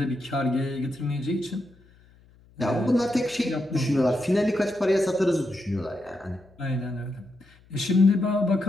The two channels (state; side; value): noise; left; hum, 28 dB below the sound